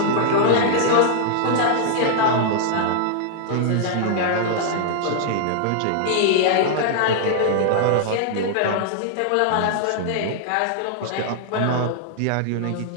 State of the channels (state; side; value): different; both; correlation -0.01